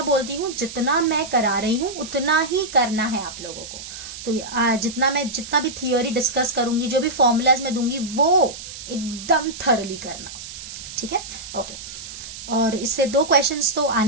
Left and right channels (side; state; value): right; noise; hiss, 12 dB below the sound